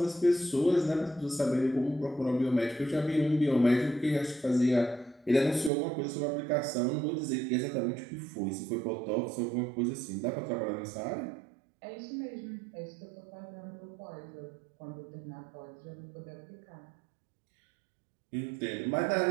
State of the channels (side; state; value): left; drops out; at 5.7 s